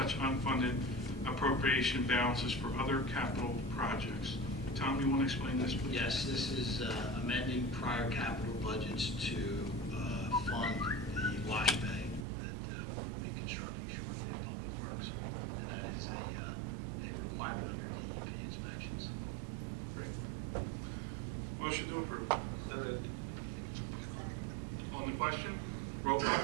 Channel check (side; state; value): left; drops out; at 12.2 s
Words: unfunded appropriation balances for other capital projects. Tom, you want to explain this, please? Yes, this is amending prior capital budgets to fund the wash bay that we'll be constructing shortly at Public Works. And that is a requirement under DEP inspections. Great. Motion to approve. So moved. On the question, roll call,